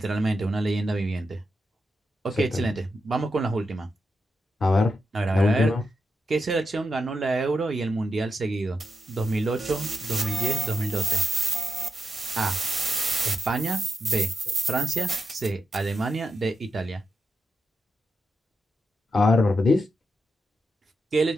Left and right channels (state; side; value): normal; both; correlation 0.86